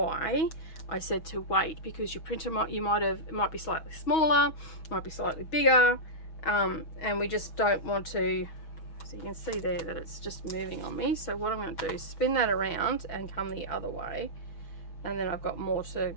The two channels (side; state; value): right; late; 6.2 ms